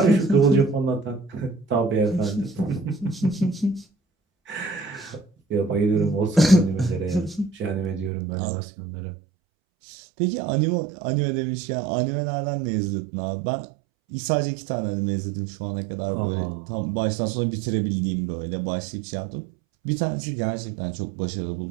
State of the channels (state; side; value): drops out; left; at 8.1 s